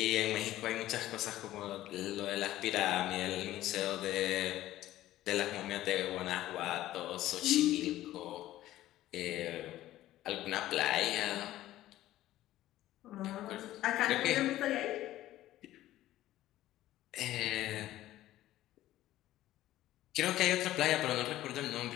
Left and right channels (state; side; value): quieter; right; 14.6 dB